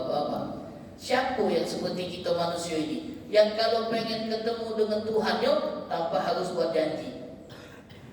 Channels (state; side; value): identical; both; correlation 1.00